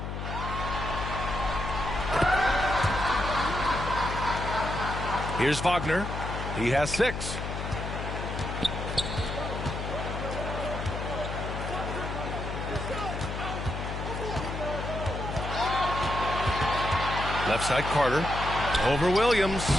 Here's Wagner. He has 6. Left side, Carter. Over Williams.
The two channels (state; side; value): noise; left; hum, 5 dB below the sound